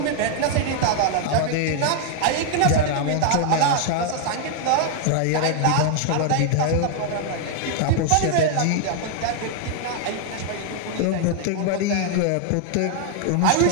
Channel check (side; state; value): both; different; correlation 0.00